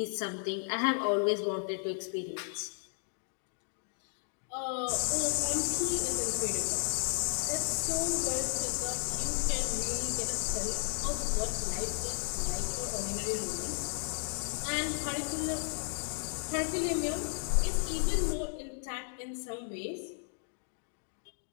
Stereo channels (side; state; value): right; silent; 55 dB below the other